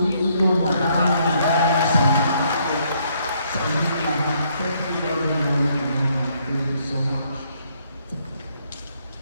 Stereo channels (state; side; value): inverted; both; correlation -0.70